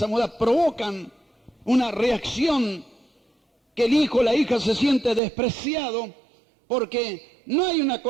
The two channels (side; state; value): left; drops out; at 5.2 s